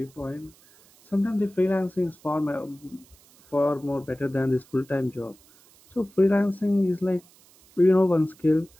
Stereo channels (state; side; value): noise; right; hiss, 28 dB below the sound